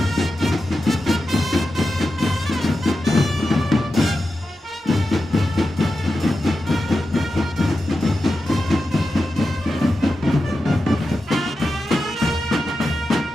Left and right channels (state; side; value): normal; both; correlation 0.91